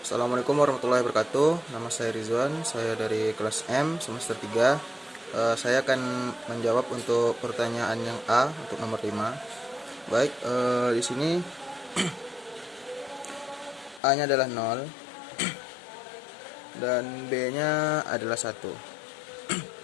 Assalamualaikum warahmatullahi wabarakatuh. Nama saya Rizwan, saya dari kelas M semester 3. Saya akan menjawab untuk pertanyaan yang A untuk nomor 5. Baik, di sini A-nya adalah 0 dan B-nya adalah 1.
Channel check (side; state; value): right; drops out; at 14.0 s